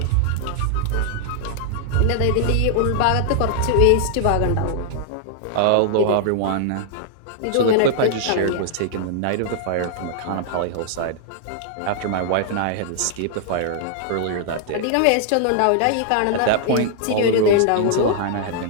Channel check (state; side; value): different; both; correlation -0.01